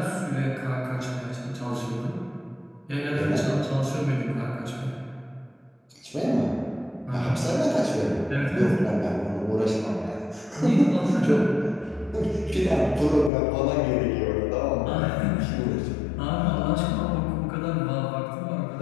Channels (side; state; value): right; drops out; at 13.3 s